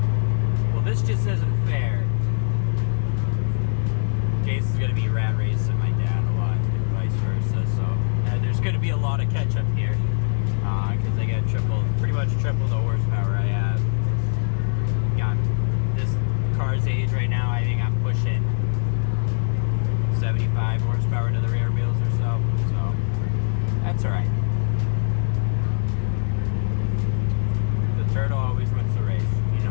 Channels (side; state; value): right; silent; digital silence